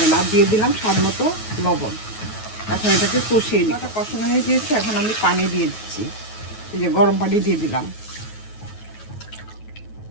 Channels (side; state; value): right; late; 9.3 ms